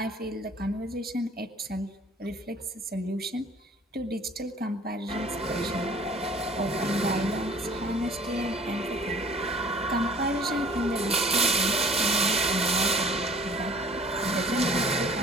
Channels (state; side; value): normal; both; correlation 0.51